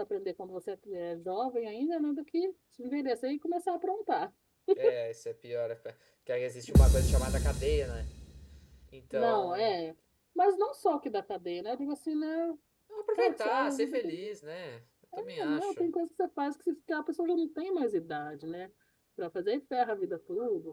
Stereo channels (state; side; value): identical; both; correlation 1.00